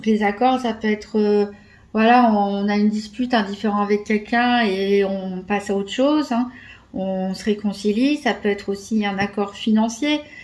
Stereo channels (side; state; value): both; identical; correlation 1.00